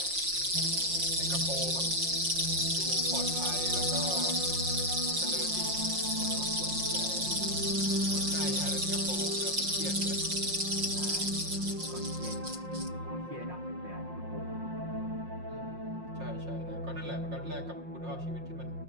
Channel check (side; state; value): left; late; 5.6 ms